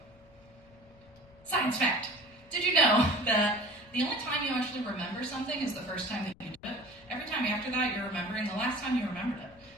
science fact. Did you know that the only time you actually remember something is the first time that you do it? Every time after that, you're remembering the last time you remembered it.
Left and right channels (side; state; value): left; noise; rumble, 27 dB below the sound